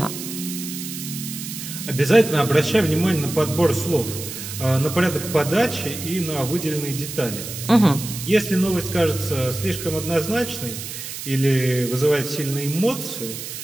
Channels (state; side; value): noise; right; hiss, 9 dB below the sound